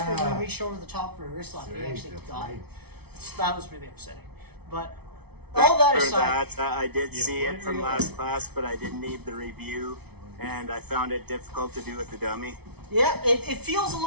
Yeah. and reached over the top for a wrist lock. That's He right, actually that's got right. it. That was really upsetting. But all that For aside, that, I did see it from last class, but I didn't need the review, and I found it difficult to do with the dummy. yeah, it feels a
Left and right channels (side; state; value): left; late; 0.98 ms